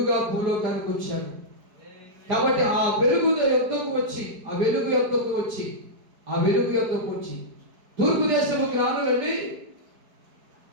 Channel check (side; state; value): left; late; 4.7 ms